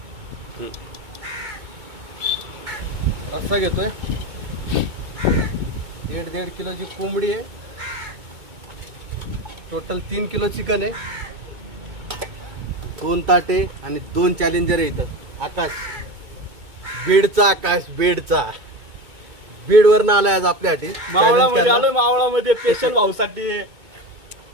रस्सा घेतोय. 1.5 किलोची कोंबडी आहे. टोटल 3 किलो चिकन आहे. 2 ताटे आणि 2 चॅलेंजर आहे इथं. आकाश बीडचा, आकाश बीडचा. बीडवरनं आलाय आज आपल्यासाठी. मावळामध्ये आलोय. मावळामध्ये स्पेशल भाऊसाठी.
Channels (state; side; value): late; left; 2.2 ms